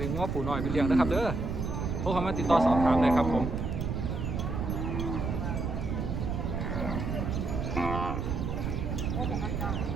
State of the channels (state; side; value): noise; right; rumble, 2 dB below the sound